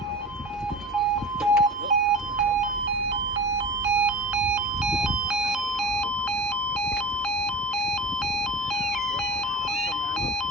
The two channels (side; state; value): both; normal; correlation 0.35